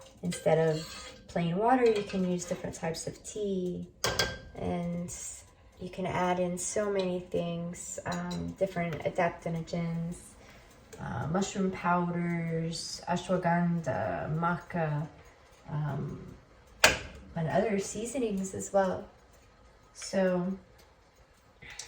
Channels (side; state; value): both; identical; correlation 1.00